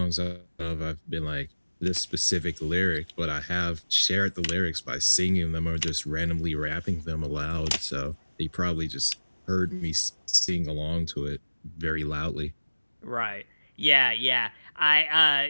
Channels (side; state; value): both; inverted; correlation -1.00